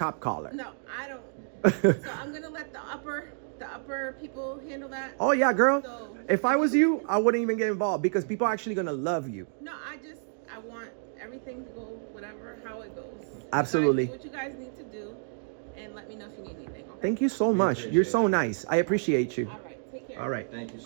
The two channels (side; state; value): left; silent; digital silence